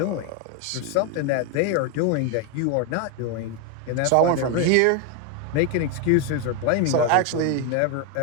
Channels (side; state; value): both; different; correlation 0.01